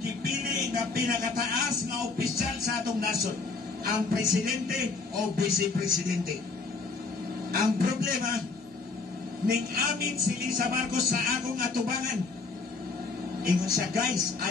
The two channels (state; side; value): quieter; right; 4.2 dB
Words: gipili nga pinakataas nga opisyal sa atong nasod, ang presidente o vice-presidente. Ang problema, ning amin si Lisa Marcos sa akong atubangan. Ingon siya, guys,